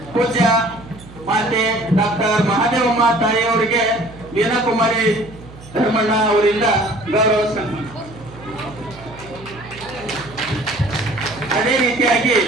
ಪೂಜ್ಯ ಮಾತೆ ಡಾಕ್ಟರ್ ಮಹಾದೇವಮ್ಮ ತಾಯಿಯವರಿಗೆ ಮೀನಾಕುಮಾರಿ ಧರ್ಮಣ್ಣ ಅವರಿಂದ ಗೌರವ ಸನ್ಮಾನ. ಅದೇ ರೀತಿಯಾಗಿ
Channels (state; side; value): noise; right; hum, 19 dB below the sound